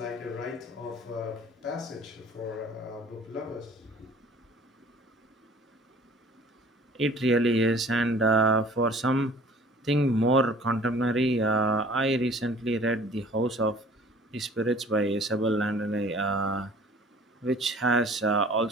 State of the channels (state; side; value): normal; both; correlation 0.50